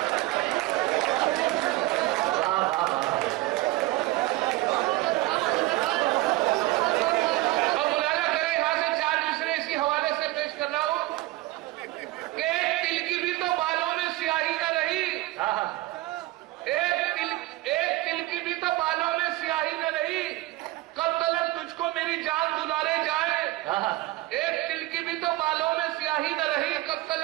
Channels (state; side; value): quieter; left; 18.6 dB